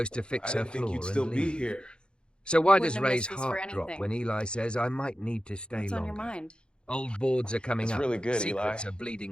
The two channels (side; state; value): right; late; 0.052 ms